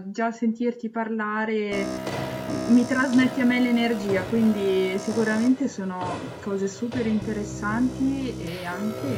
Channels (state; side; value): identical; both; correlation 1.00